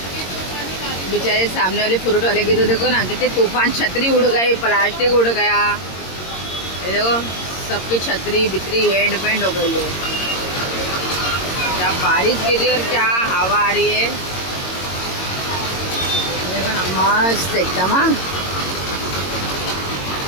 बेचारे सामने वाले फ्रूट वाले की तो देखो ना कितने तूफान छतरी उड़ गई प्लास्टिक उड़ गया ये देखो सबकी छतरी बितरी एंड पेंड हो गई है क्या बारिश गिरी और क्या हवा आ रही है देखो ना मस्त एकदम हाँ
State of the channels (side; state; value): right; late; 22 ms